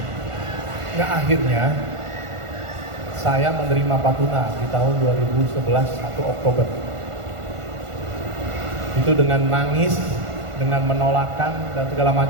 Nah akhirnya saya menerima Patuna di tahun 2011 1 Oktober. Itu dengan nangis, dengan menolakkan dan segala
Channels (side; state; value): left; late; 1.5 ms